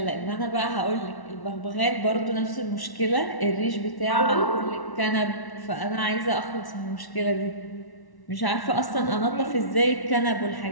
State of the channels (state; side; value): late; right; 1.1 ms